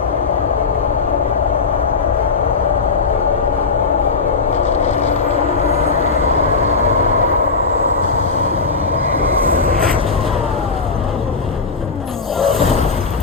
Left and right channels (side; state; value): right; quieter; 4.5 dB